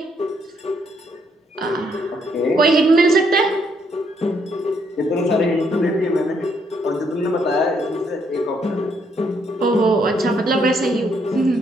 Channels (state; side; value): normal; both; correlation 0.72